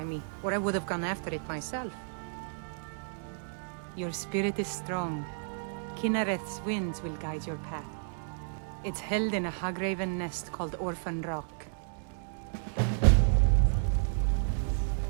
me, or I would have gone after it myself. Your spirit is strong. Kinareth's winds will guide your path. It's held in a Hagraven nest called Orphan Rock.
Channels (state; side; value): silent; left; digital silence